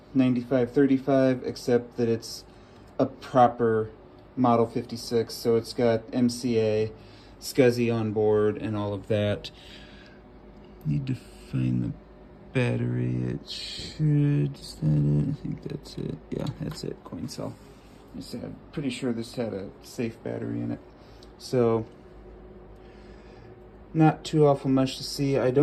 9535, except that it's a proper Model 56, so it's got MCA, SCSI on board, and all of that. Need to find the battery. It should, is that it? I think that's it. Yeah, that's it, coin cell. I'm pretty sure this had a safe battery in it. So, not too awful much to see. I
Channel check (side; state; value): both; identical; correlation 1.00